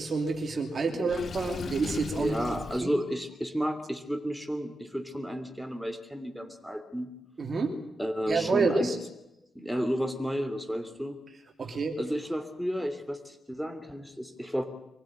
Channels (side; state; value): both; normal; correlation 0.90